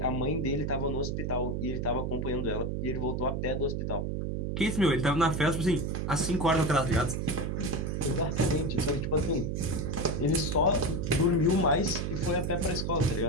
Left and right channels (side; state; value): right; noise; hum, 1 dB below the sound